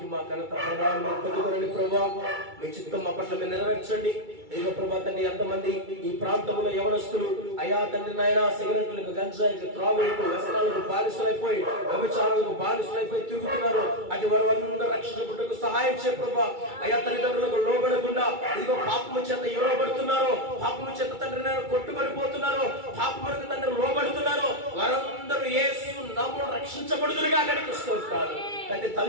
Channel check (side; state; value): left; late; 2.3 ms